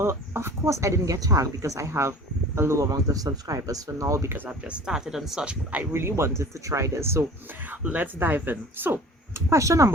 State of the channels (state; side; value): normal; both; correlation 0.43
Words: of course I didn't get tagged because I have a low amount of subscribers for now because I've just started and such, but I really wanted to try this, so let's dive in. So question